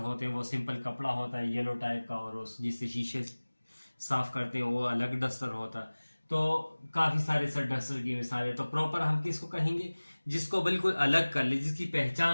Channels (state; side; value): inverted; both; correlation -1.00